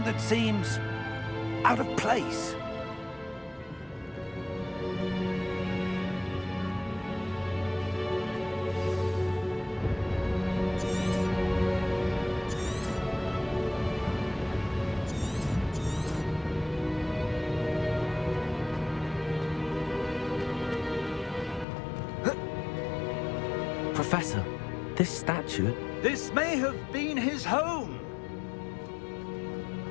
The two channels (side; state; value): right; drops out; at 21.7 s